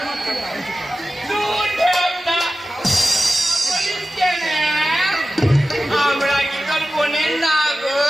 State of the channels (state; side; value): normal; both; correlation 0.95